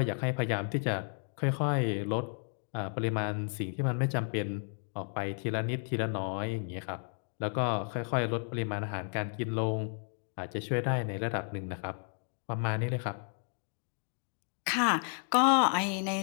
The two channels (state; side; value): silent; right; 56 dB below the other